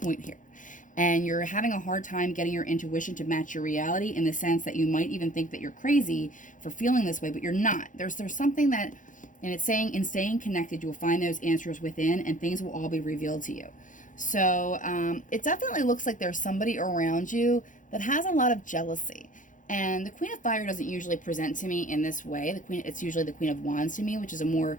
here. And you're having a hard time getting your intuition to match your reality, in the sense that you might even think that you're crazy for feeling this way, but you're not. There's something that, and it's saying in staying connected, you'll find those answers within and things will all be revealed to you. So it definitely looks like there's somebody around you that has a lot of jealousy. And the Queen of Fire doesn't usually present to me in this way. It's usually the Queen of Wands to me, which is a more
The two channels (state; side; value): late; right; 0.38 ms